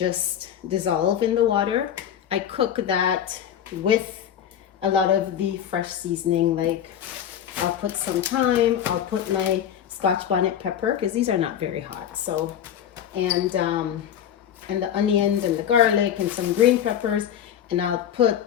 dissolve in the water. I cook that with a lot of the fresh seasoning, like I'll put some thyme, I'll put my Scotch bonnet pepper, because these are not very hot. So, and the onions and the garlic and some green peppers, and I'll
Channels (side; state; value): right; quieter; 9.7 dB